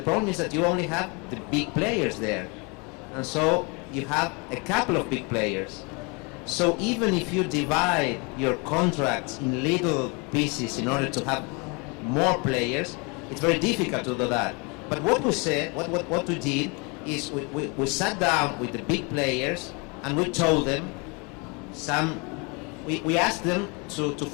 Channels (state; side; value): quieter; right; 30.7 dB